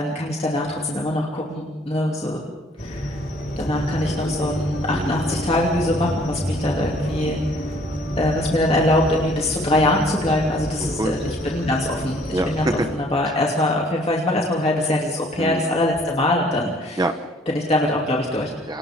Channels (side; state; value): both; normal; correlation 0.58